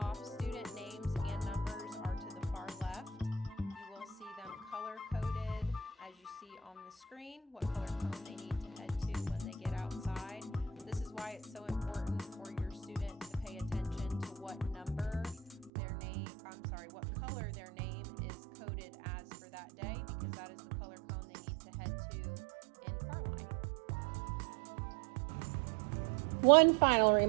it's so important for your student to pay attention to what number their name, what color their name is coded as for that day, because that is the color cone they need to head to in Carline. One final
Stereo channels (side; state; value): left; drops out; at 15.7 s